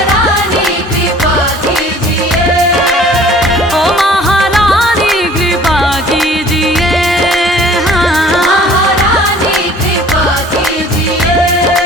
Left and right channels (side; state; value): both; normal; correlation 0.51